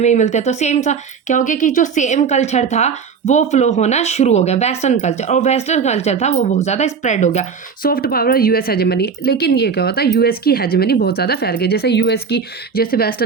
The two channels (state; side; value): quieter; left; 6.0 dB